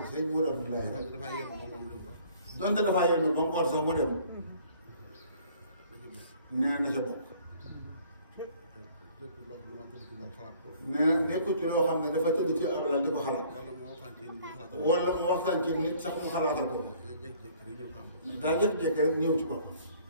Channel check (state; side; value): inverted; both; correlation -0.56